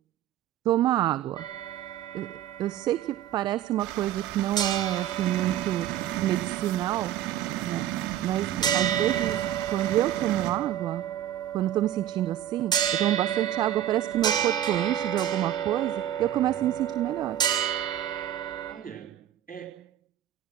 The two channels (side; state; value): left; quieter; 11.8 dB